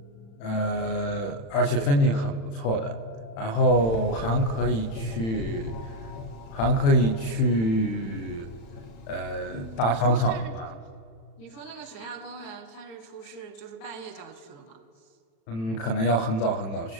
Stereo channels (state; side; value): late; right; 36 ms